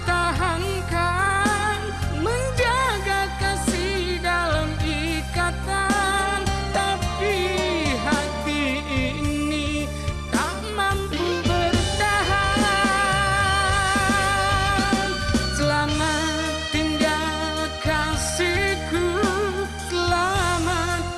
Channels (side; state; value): both; identical; correlation 1.00